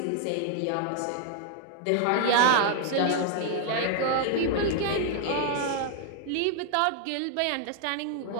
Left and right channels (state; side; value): different; both; correlation 0.00